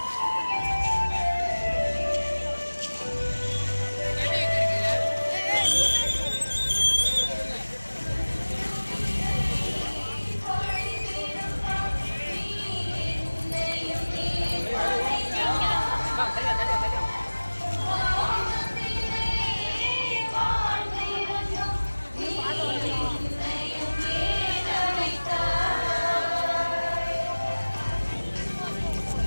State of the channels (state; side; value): inverted; both; correlation -1.00